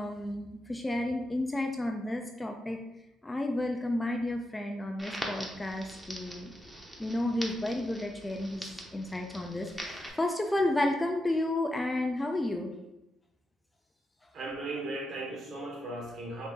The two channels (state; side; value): normal; both; correlation 0.87